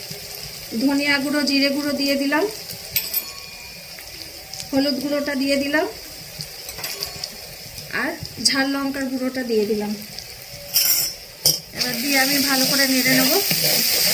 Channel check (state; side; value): identical; both; correlation 1.00